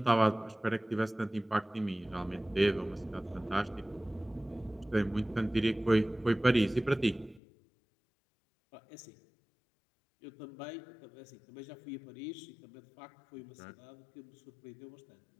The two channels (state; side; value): drops out; right; at 7.4 s